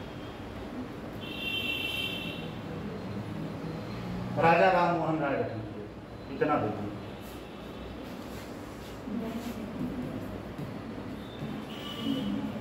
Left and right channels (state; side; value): identical; both; correlation 1.00